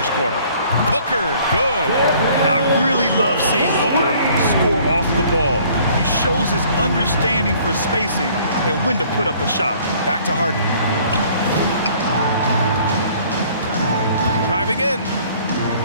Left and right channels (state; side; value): inverted; both; correlation -0.57